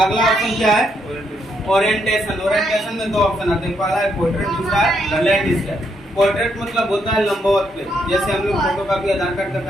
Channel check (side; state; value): both; normal; correlation 0.76